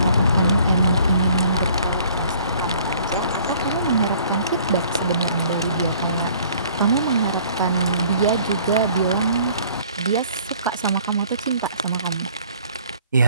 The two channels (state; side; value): inverted; both; correlation -0.56